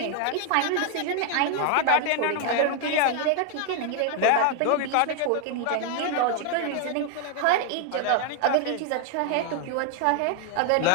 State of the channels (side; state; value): both; different; correlation 0.00